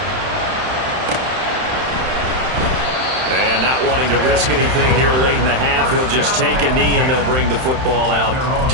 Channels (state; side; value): late; left; 31 ms